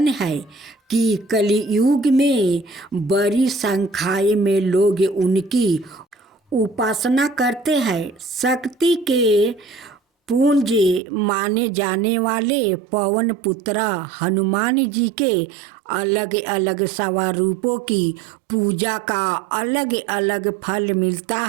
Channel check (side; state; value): left; drops out; at 11.0 s